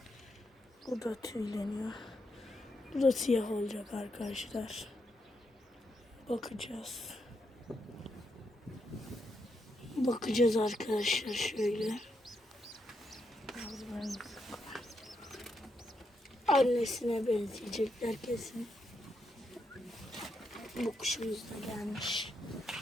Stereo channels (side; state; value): both; normal; correlation 0.81